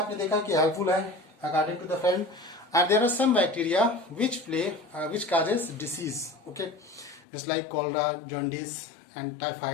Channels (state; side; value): drops out; right; at 7.2 s